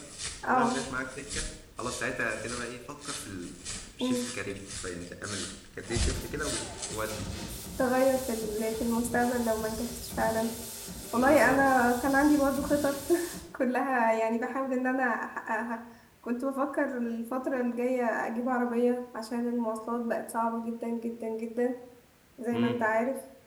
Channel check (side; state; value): both; identical; correlation 1.00